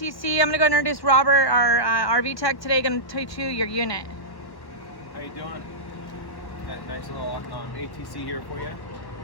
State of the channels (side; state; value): right; late; 1.1 ms